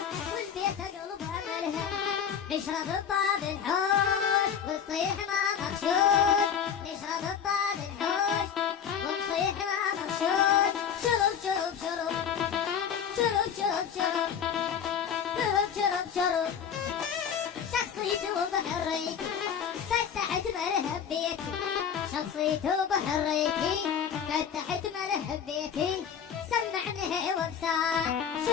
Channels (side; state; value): right; quieter; 7.8 dB